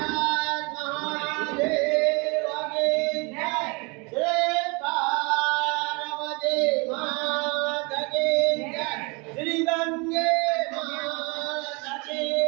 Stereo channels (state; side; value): quieter; left; 29.3 dB